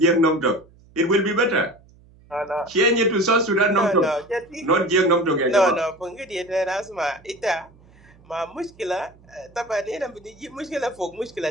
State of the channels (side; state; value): right; noise; hum, 27 dB below the sound